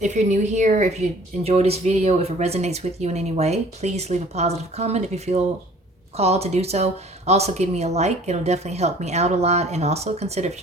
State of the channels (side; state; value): both; normal; correlation 0.52